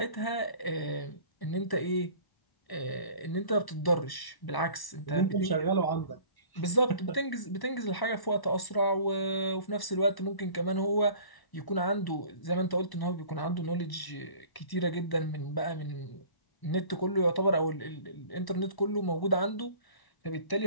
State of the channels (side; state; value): right; late; 1.0 ms